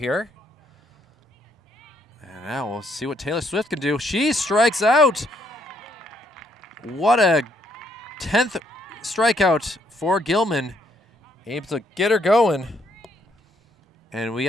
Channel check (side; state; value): both; normal; correlation 0.71